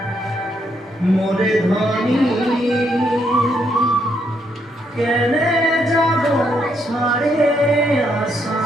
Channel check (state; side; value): normal; both; correlation 0.75